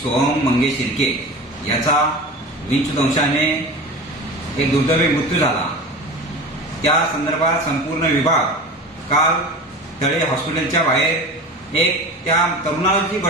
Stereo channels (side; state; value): both; normal; correlation 0.33